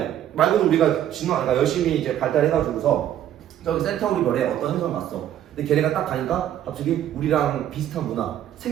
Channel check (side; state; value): left; quieter; 11.3 dB